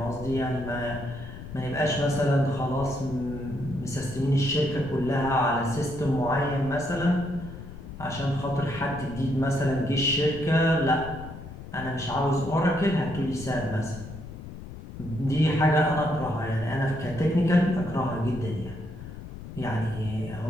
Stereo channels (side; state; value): left; noise; rumble, 12 dB below the sound